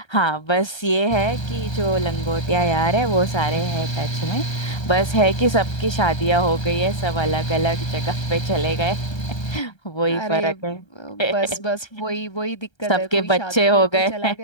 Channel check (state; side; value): late; right; 1.3 ms